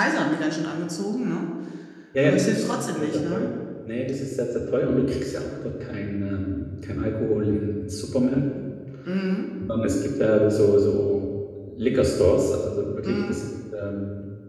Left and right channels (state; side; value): identical; both; correlation 1.00